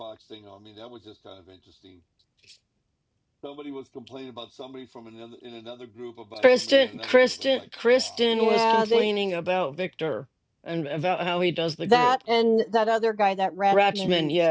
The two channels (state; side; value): identical; both; correlation 1.00